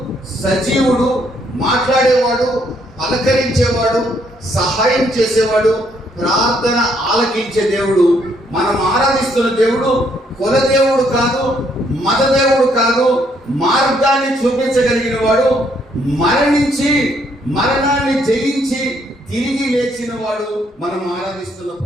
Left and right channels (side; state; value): both; normal; correlation 0.70